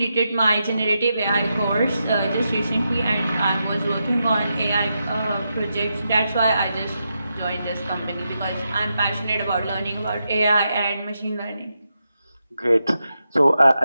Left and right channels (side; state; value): both; inverted; correlation -0.86